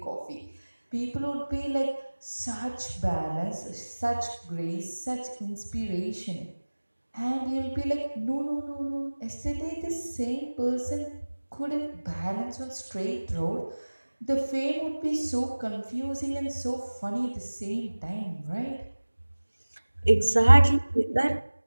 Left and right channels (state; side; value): inverted; both; correlation -1.00